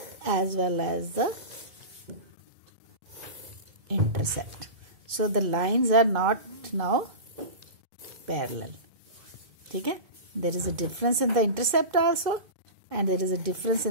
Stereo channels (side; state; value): left; late; 2.2 ms